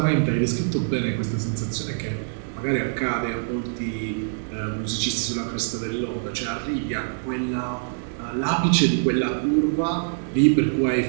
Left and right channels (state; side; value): silent; left; 57 dB below the other